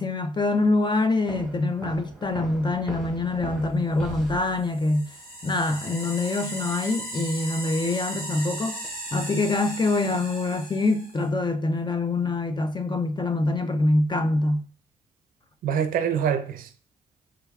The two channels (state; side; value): normal; both; correlation 0.69